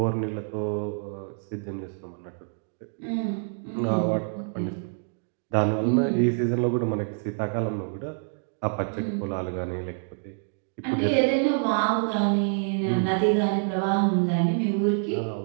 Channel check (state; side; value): silent; left; 60 dB below the other